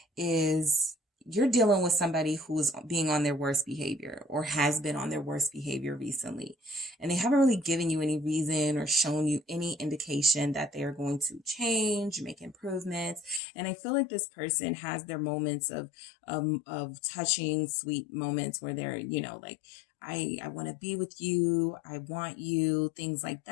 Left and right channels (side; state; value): right; drops out; at 13.4 s